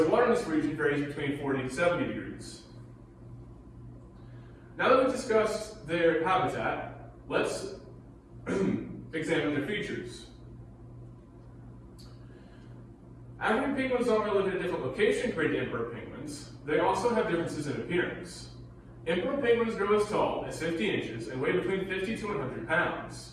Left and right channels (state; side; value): identical; both; correlation 1.00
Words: water in this region varies between 40 to 70 degrees. Now that we've discussed their habitat, let's examine their features. African penguins not only live in a different location compared to emperor penguins, they also have differences in appearance. Emperor penguins grow as tall as 50 inches and weigh between 50 to 100